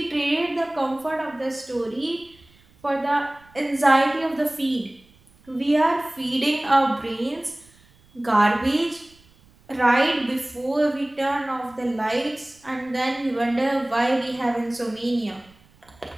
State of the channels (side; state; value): right; noise; rumble, 29 dB below the sound